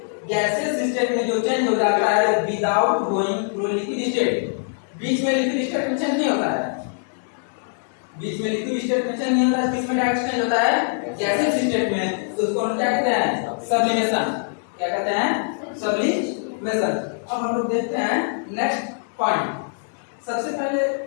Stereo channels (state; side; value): silent; right; digital silence